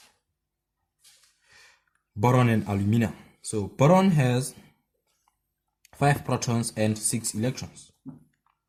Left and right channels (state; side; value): identical; both; correlation 1.00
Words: boron and aluminum. So boron has 5 protons and 6 electrons.